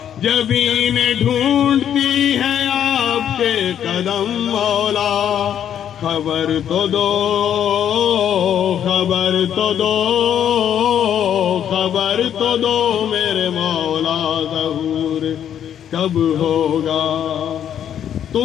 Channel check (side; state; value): right; quieter; 9.6 dB